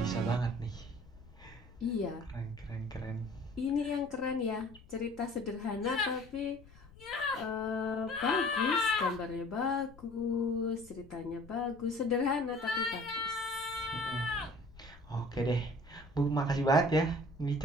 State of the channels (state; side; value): noise; left; rumble, 21 dB below the sound